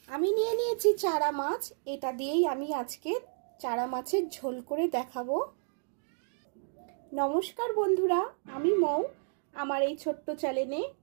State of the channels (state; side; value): silent; left; digital silence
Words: আমি নিয়ে নিয়েছি চারা মাছ। এটা দিয়েই আমি আজকে চারা মাছের ঝোল করে দেখাবো। নমস্কার বন্ধুরা, আমি মৌ। আমার এই ছোট্ট চ্যানেলে